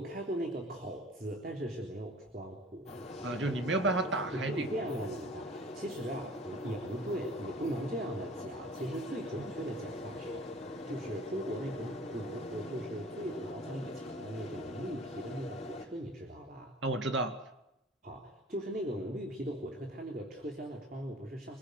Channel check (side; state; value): both; normal; correlation 0.47